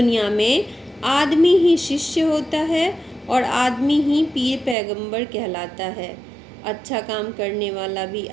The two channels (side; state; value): left; drops out; at 4.8 s